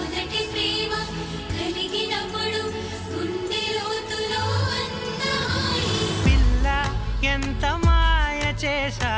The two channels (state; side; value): identical; both; correlation 1.00